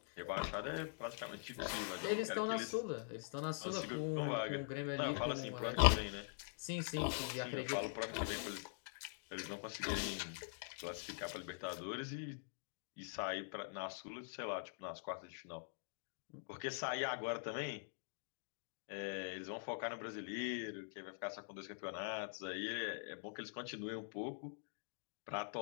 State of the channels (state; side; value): silent; right; digital silence